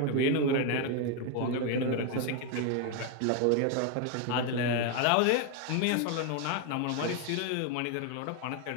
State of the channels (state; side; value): different; both; correlation 0.01